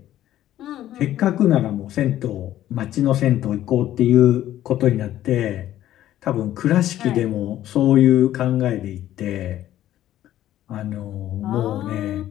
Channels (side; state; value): right; quieter; 12.9 dB